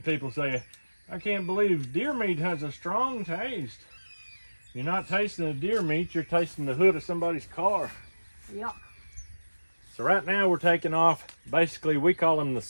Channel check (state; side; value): inverted; both; correlation -1.00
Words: people say, I can't believe deer meat has a strong taste. You're not tasting the deer meat, you're tasting the hood of somebody's car. Yeah. So right now we're taking off, basically we call them the